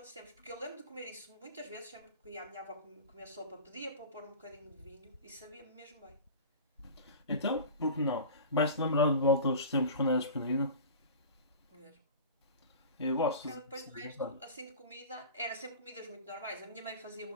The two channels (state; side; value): inverted; both; correlation -0.35